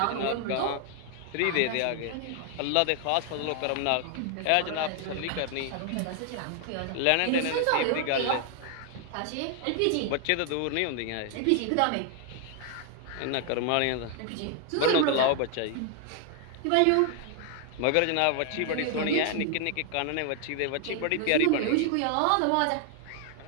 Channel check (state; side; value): different; both; correlation 0.00